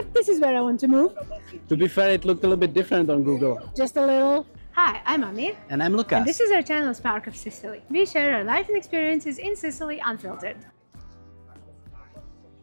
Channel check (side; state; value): both; inverted; correlation -1.00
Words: this is where I want to move. To be fair, it looked a little bit different on Google. Just a little. Hi, I'm Ami. And I'm Lucas. And this is our channel, Spark of Sicily. We share our life and experiences in Sicily unfiltered.